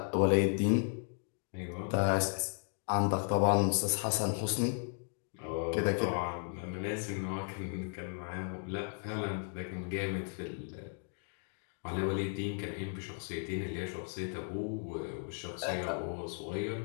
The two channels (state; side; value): silent; right; 54 dB below the other